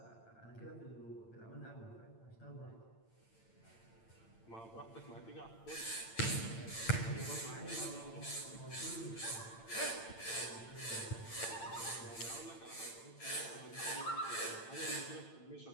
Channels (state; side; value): late; right; 8.8 ms